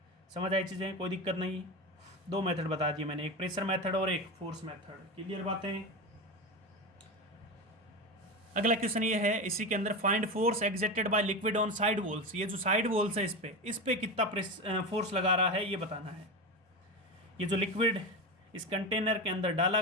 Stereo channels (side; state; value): both; normal; correlation 0.21